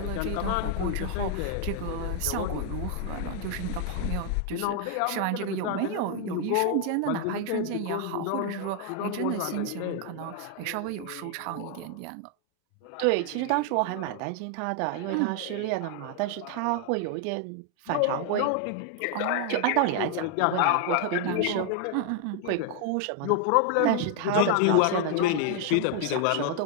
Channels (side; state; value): both; different; correlation 0.00